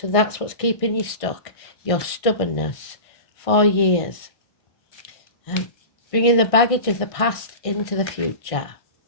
that's what's keeping you stuck. Your stubbornness. 4 years. Bringing the baggage of the past into the future.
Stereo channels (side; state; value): right; late; 1.6 ms